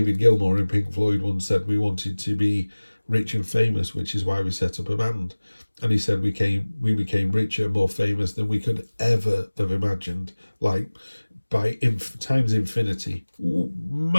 Gilmour in Pink Floyd once said we wanted to be rich and famous, which is why we set up a band. And he said we became richer, more famous than we could ever have imagined, like by times infinity.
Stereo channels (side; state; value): both; inverted; correlation -1.00